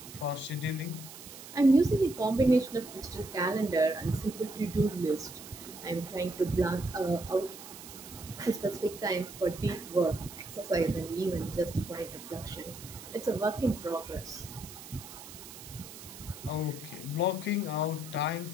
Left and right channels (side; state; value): right; noise; hiss, 15 dB below the sound